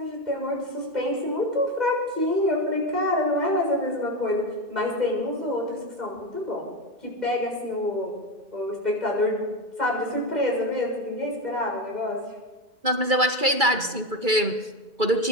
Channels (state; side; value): late; left; 2.3 ms